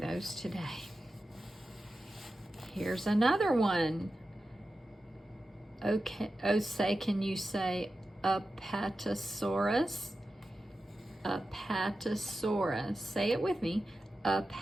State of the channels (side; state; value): both; normal; correlation 0.92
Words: today. Here's another one. Okay, oh, say, can you say Apatosaurus? Apatosaurus. Say it with me.